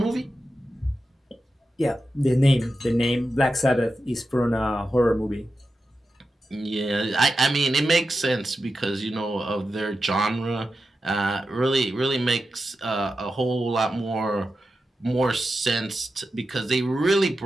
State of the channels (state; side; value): normal; both; correlation 0.91